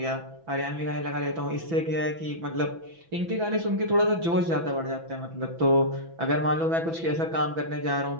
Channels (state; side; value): late; left; 6.0 ms